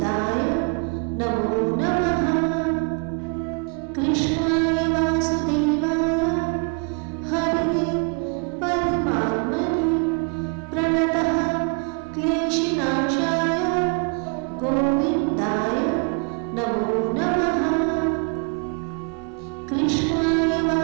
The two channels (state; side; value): quieter; left; 35.0 dB